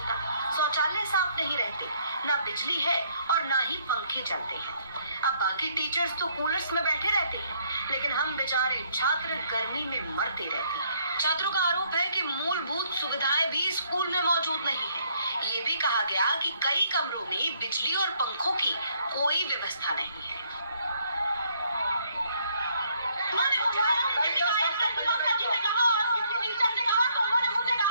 शौचालय साफ नहीं रहते, न बिजली है और न ही पंखे चलते हैं। अब बाकी टीचर्स तो कूलर्स में बैठे रहते हैं, लेकिन हम बेचारे छात्र गर्मी में मरते रहते हैं। छात्रों का आरोप है कि मूलभूत सुविधाएं भी स्कूल में मौजूद नहीं है। ये भी कहा गया कि कई कमरों में बिजली और पंखों की कोई व्यवस्था नहीं है।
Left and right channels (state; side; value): inverted; both; correlation -0.67